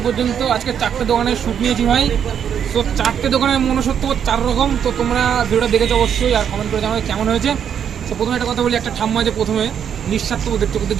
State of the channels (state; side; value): quieter; left; 8.4 dB